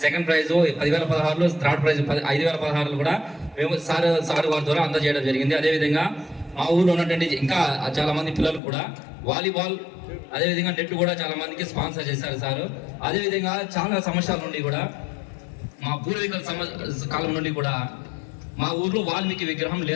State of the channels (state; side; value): drops out; right; at 8.6 s